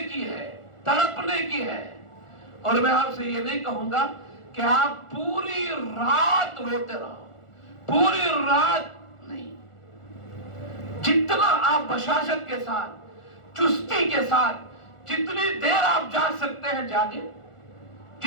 کی ہے، تڑپنے کی ہے۔ اور میں آپ سے یہ نہیں کہوں گا کہ آپ پوری رات روتے رہو، پوری رات نہیں، جتنا آپ بشاشت کے ساتھ، چستی کے ساتھ، جتنی دیر آپ جاگ سکتے ہیں جاگیں،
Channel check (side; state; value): right; late; 1.4 ms